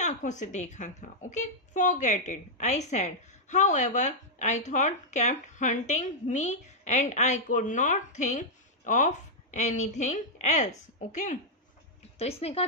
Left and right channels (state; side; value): normal; both; correlation -0.06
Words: आंखों से देखा था। Okay, forget it I said, however I thought kept hunting me and I could not think of anything else. Okay, तो इसने कहा